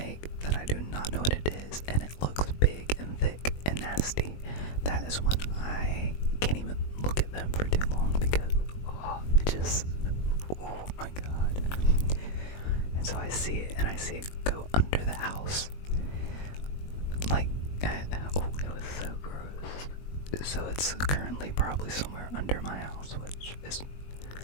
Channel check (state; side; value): late; right; 21 ms